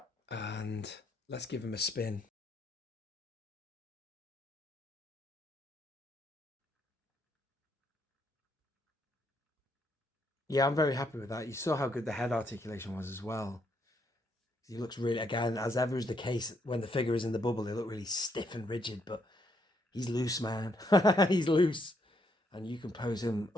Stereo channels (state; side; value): normal; both; correlation 0.73